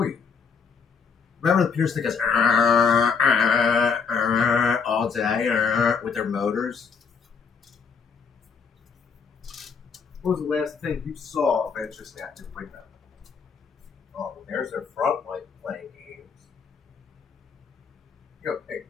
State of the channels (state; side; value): quieter; right; 5.8 dB